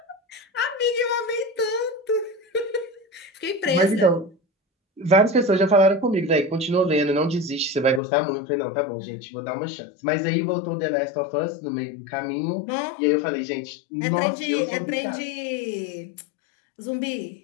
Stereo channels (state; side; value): drops out; right; at 8.0 s